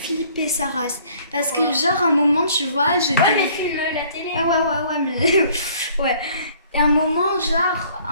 sa race. Parce que, genre, un moment, tu vois, j'étais... Ouais, mais filme la télé. Ah ouais, mais... ouais. Et un moment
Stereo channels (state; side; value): inverted; both; correlation -0.57